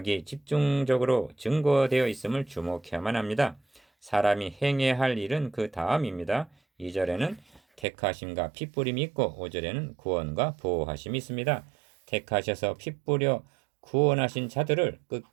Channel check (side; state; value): left; drops out; at 7.9 s